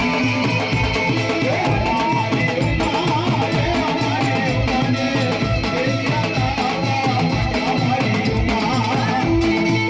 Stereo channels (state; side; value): identical; both; correlation 1.00